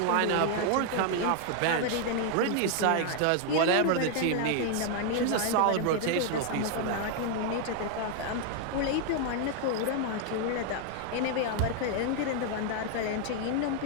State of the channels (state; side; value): different; both; correlation 0.00